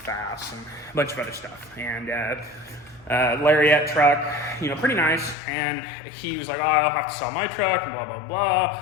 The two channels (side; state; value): right; drops out; at 5.4 s